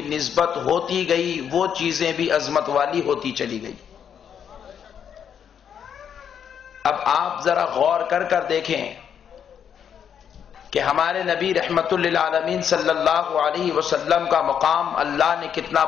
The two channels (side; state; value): right; quieter; 8.2 dB